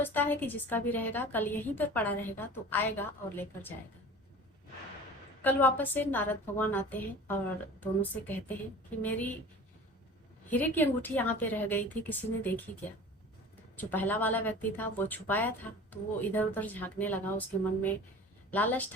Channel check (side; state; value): both; normal; correlation 0.40